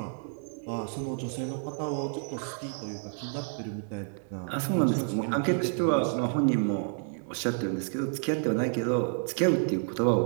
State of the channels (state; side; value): silent; left; digital silence